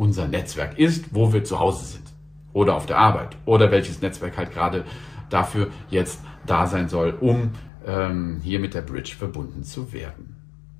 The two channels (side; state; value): right; drops out; at 7.7 s